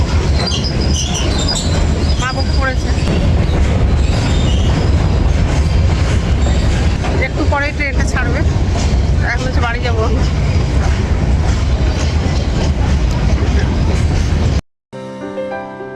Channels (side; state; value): both; identical; correlation 1.00